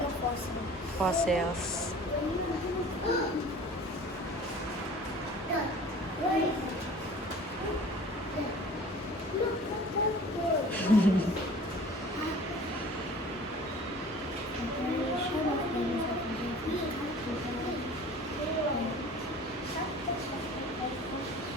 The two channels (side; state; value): both; normal; correlation 0.45